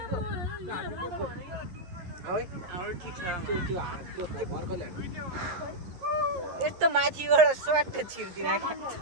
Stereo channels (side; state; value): left; late; 11 ms